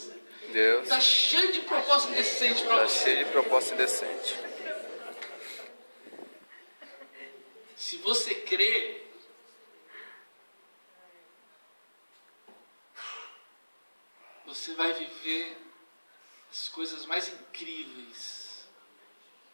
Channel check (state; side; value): inverted; both; correlation -1.00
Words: está cheio de proposta indecente para você. Está cheio de proposta indecente. Se você crê, você vai viver as coisas mais incríveis